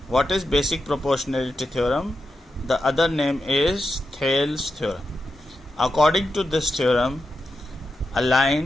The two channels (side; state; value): both; normal; correlation 0.88